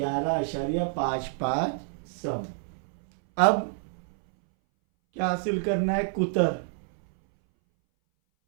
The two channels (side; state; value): left; silent; 60 dB below the other